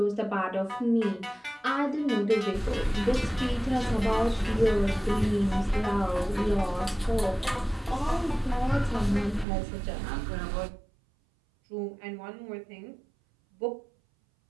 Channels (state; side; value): drops out; left; at 9.5 s